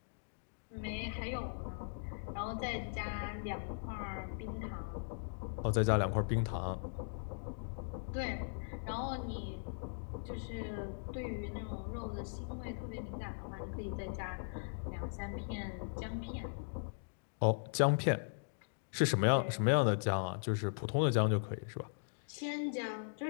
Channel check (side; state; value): right; silent; digital silence